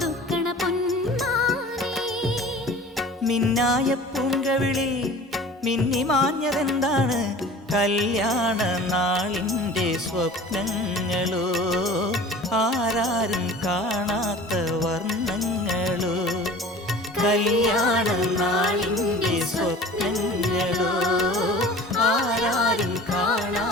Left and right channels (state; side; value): normal; both; correlation 0.42